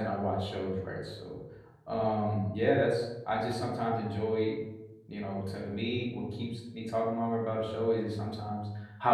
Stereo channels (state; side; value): identical; both; correlation 1.00